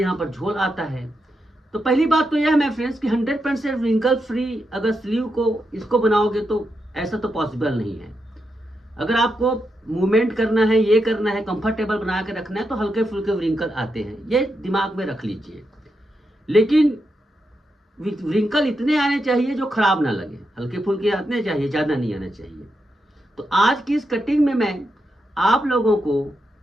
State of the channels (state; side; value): normal; both; correlation 0.85